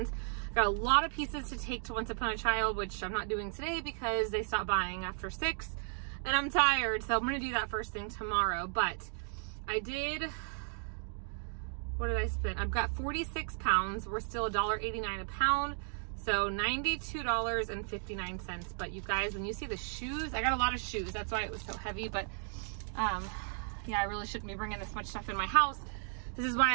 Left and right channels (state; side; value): silent; left; 54 dB below the other